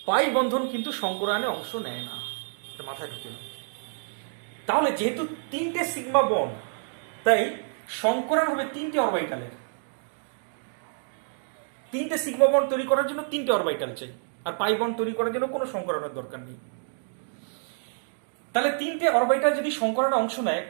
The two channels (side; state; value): left; silent; digital silence